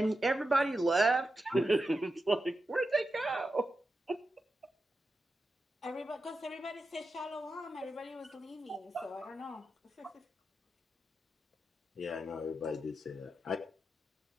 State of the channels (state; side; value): normal; both; correlation 0.89